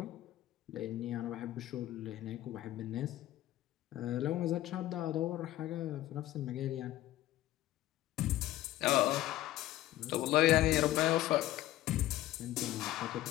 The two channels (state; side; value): quieter; right; 14.9 dB